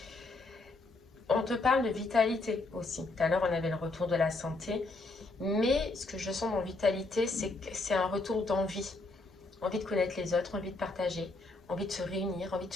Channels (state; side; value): quieter; right; 3.3 dB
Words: On te parle de vitalité aussi. Tout à l'heure, on avait le retour de la santé. Mais ce que je sens dans vitalité, c'est que c'est un retour d'envie. Envie de connaître les autres, envie de partager, envie de se réunir, envie de